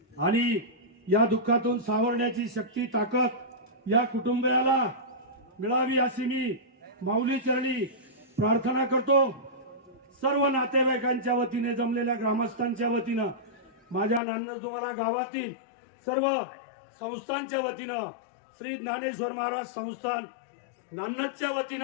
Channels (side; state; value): right; drops out; at 14.2 s